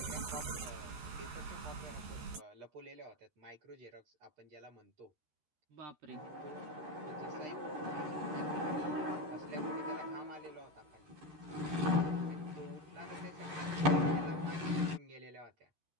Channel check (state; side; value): late; left; 13 ms